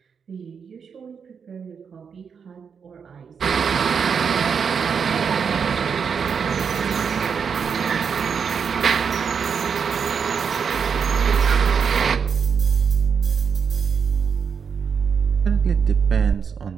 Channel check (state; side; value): quieter; left; 6.5 dB